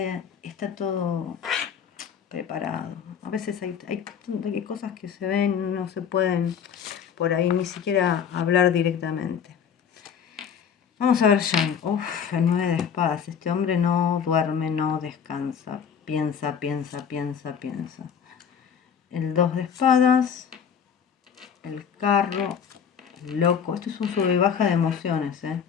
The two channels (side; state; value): right; quieter; 7.5 dB